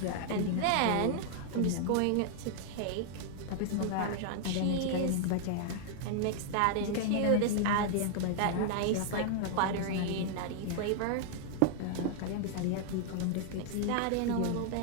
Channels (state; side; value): different; both; correlation 0.00